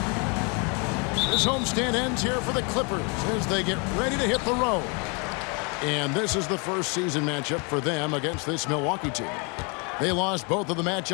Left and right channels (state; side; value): quieter; right; 33.1 dB